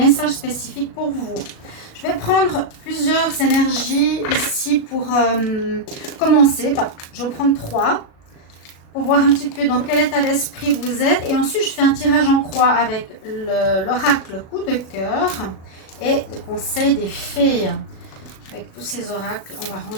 spécifique pour vous. Je vais prendre plusieurs énergies ici pour commencer. Enfin, je vais en prendre 3 pour voir un petit peu dans quel état d'esprit vous êtes. Et ensuite, je fais un tirage en croix avec l'oracle coup de cœur et le conseil des fées. Avec tous ces oracles, on va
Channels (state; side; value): late; right; 37 ms